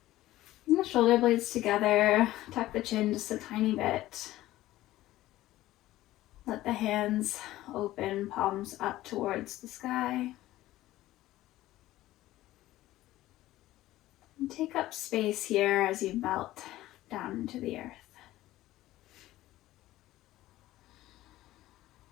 And the shoulder blades together, tuck the chin just a tiny bit. Let the hands open, palms up towards the sky. And take up space here as you melt down into the earth.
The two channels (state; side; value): quieter; right; 15.8 dB